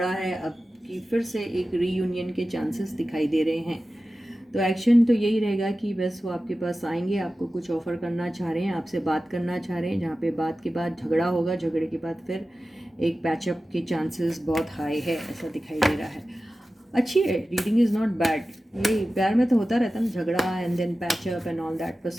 है, अब की फिर से एक रीयूनियन के चांसेस दिखाई दे रहे हैं। तो एक्शन तो यही रहेगा कि बस वो आपके पास आएंगे, आपको कुछ ऑफ़र करना चाह रहे हैं, आपसे बात करना चाह रहे हैं, जहाँ पे बात के बाद झगड़ा होगा, झगड़े के बाद फिर एक पैचअप के चांसेस बहुत हाई है, ऐसा दिखाई दे रहा है। अच्छी है, रीडिंग इज़ नॉट बैड। ये प्यार में तो होता रहता है ना, झगड़ा and then patch up and all that,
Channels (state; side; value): normal; both; correlation 0.95